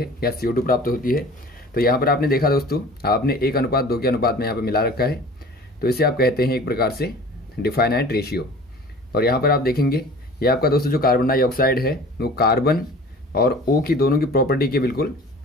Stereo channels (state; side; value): normal; both; correlation 0.43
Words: या CO2 प्राप्त होती है। तो यहाँ पर आपने देखा दोस्तों, आपने 1:2 के अनुपात में यहाँ पे मिला रखा है। तो इसे आप कहते हैं एक प्रकार से डिफाइनाइट रेशियो। और यहाँ पर आप देखेंगे ये आपका दोस्तों जो कार्बन डाइऑक्साइड है वो कार्बन और O की दोनों की प्रॉपर्टी के बिल्कुल